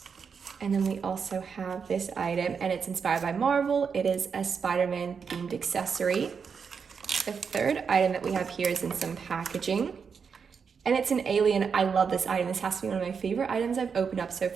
And then we also have this item, and it's inspired by Marvel. It is a Spider-Man themed accessory. The third item that we have here is in some packaging. And it's an alien. I love this item. This has to be one of my favorite items I've opened up so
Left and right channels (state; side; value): quieter; left; 6.1 dB